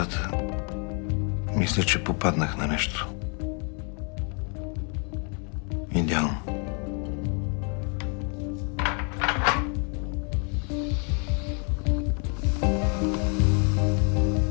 мисля, че попаднах на нещо. Идеално.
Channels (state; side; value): quieter; right; 38.3 dB